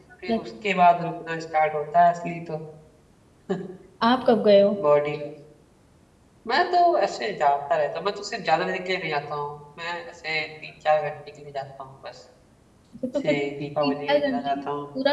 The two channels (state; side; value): identical; both; correlation 1.00